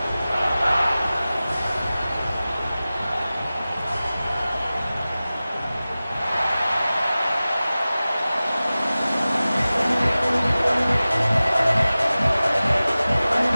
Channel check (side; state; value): both; inverted; correlation -0.97